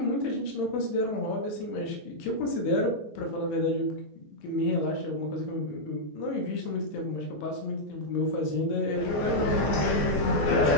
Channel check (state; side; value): late; right; 14 ms